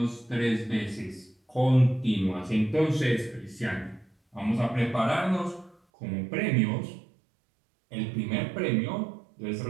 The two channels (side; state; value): left; drops out; at 5.8 s